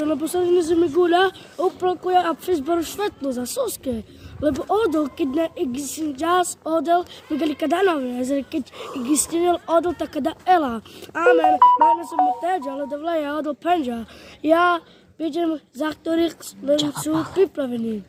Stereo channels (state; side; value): identical; both; correlation 1.00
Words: лебо са не замигуля, оплакуя а Фейсбук светло за соски. Lebo odol, keď na existenčas odol, migeli kada nove, zre keď existenil odol, tak kada ela. Amen. Majna som teđa, ale davle ja odol penža. Ja vidim za ktorých sú pripravení.